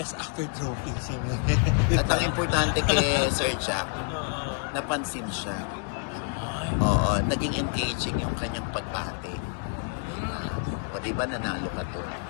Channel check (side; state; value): right; quieter; 36.4 dB